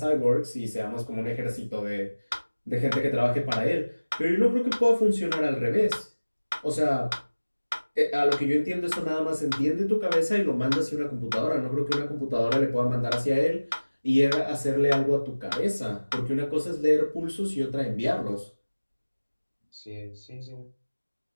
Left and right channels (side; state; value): both; inverted; correlation -1.00